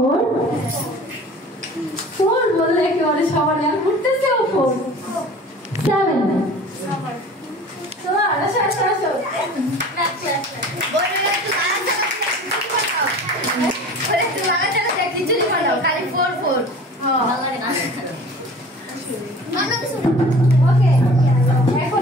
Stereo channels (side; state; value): both; normal; correlation 0.43